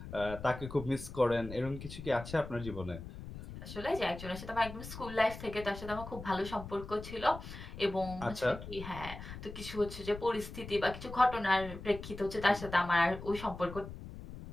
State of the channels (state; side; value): noise; left; rumble, 11 dB below the sound